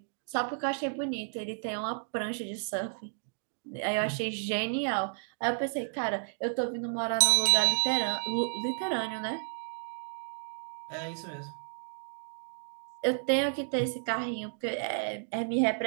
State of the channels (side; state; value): left; silent; digital silence